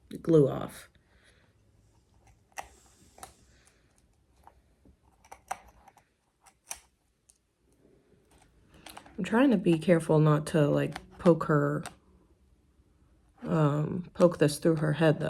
glue off. I'm trying to be careful not to like poke this through her head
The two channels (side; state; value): both; identical; correlation 1.00